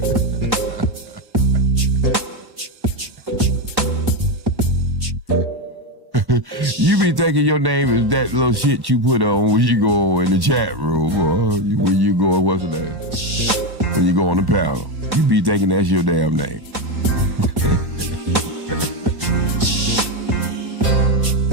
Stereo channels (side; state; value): left; late; 1.1 ms